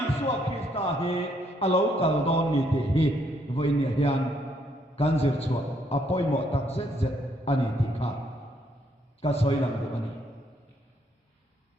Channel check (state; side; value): normal; both; correlation 0.71